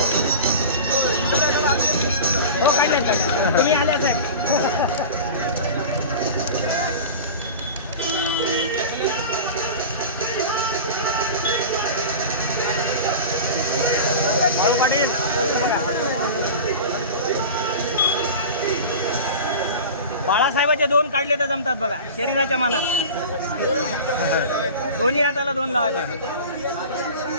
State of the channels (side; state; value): both; inverted; correlation -0.32